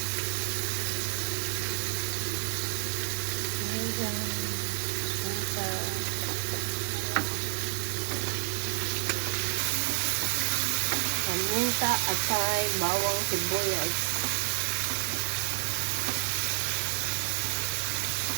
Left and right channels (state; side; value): silent; left; 58 dB below the other